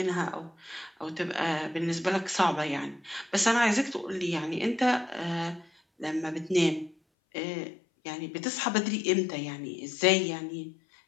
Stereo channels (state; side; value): drops out; right; at 7.0 s